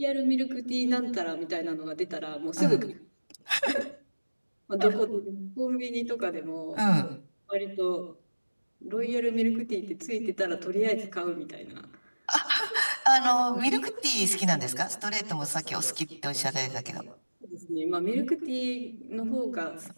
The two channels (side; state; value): both; inverted; correlation -1.00